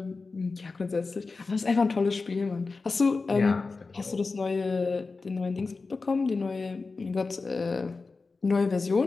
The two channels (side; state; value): right; quieter; 4.0 dB